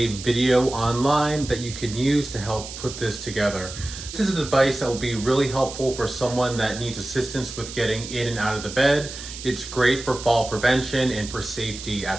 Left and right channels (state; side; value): noise; right; hiss, 11 dB below the sound